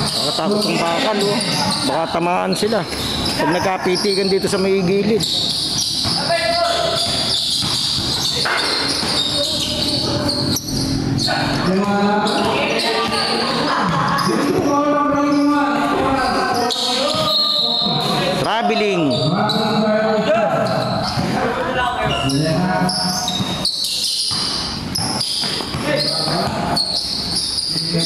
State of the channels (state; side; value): identical; both; correlation 1.00